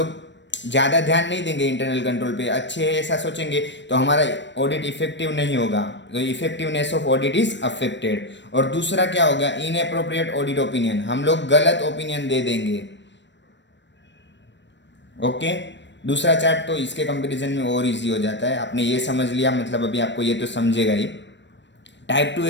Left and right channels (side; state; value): right; late; 0.53 ms